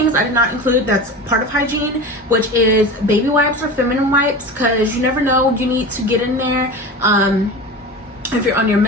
I did not include that's part of hygiene, which is baby wipes or feminine wipes, because you never know, you need to get in there. If you're on your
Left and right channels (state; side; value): normal; both; correlation 0.30